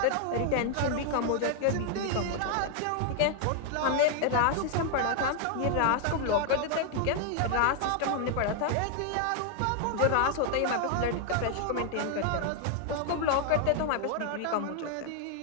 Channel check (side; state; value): both; different; correlation 0.00